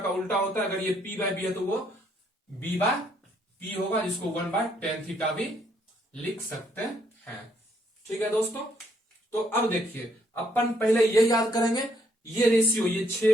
उल्टा होता है। अगर ये P बाय बी है तो वो B बाय P होगा, जिसको 1 बाय टेन थीटा भी लिख सकते हैं। ठीक है दोस्तों। तो अब देखिए अपन पहले ये याद करेंगे, ये रेशियो, ये 6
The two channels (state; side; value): normal; both; correlation 0.70